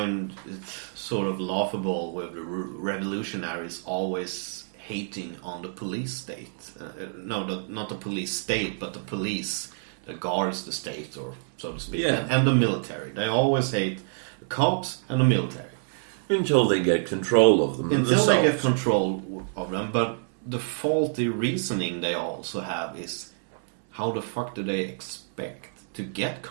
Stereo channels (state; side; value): silent; left; 60 dB below the other